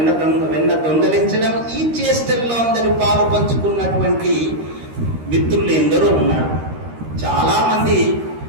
దొంగలించడం, ఈ చేష్టల్లో అందరూ పాలు పంచుకున్నటువంటి మిత్రులు ఎందరో ఉన్నారు. చాలా మంది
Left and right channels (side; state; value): left; late; 13 ms